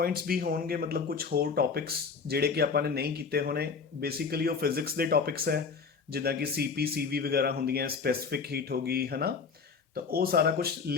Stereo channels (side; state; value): right; quieter; 5.3 dB